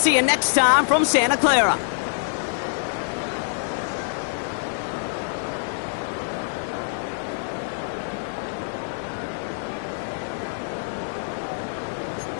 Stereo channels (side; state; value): right; silent; 61 dB below the other